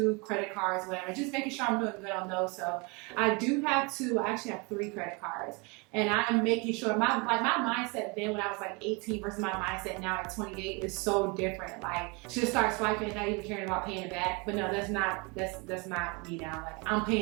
credit cards, whatever, just making sure I'm doing good on those. So I do have 2, I actually have 3 credit cards, and I'm making sure my mindset then when I was like 18 versus my mindset now at 28 is so different. Like, just start swiping and not even caring about paying it back. But no, that's not me now. Like, I'm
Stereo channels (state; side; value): quieter; left; 29.7 dB